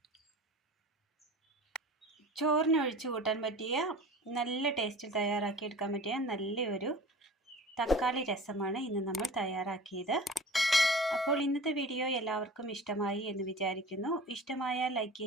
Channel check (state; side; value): normal; both; correlation 0.39